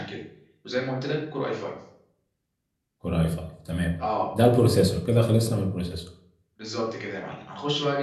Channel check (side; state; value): both; identical; correlation 1.00